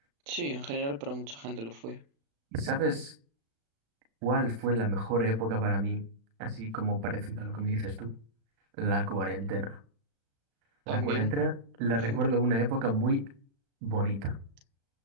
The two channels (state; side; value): late; left; 36 ms